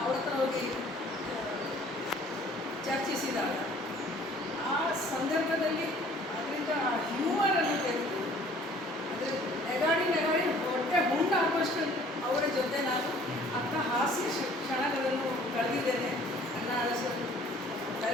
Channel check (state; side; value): normal; both; correlation 0.54